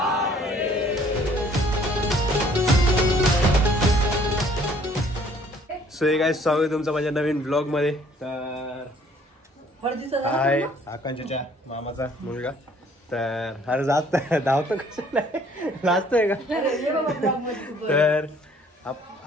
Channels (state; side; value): normal; both; correlation 0.59